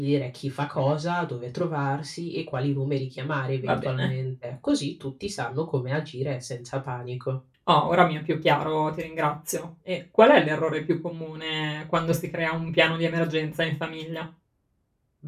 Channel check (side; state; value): both; identical; correlation 1.00